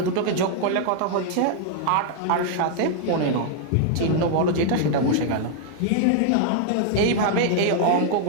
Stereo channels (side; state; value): both; different; correlation -0.01